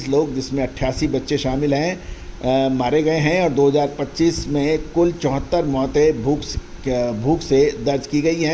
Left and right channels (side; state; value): both; identical; correlation 1.00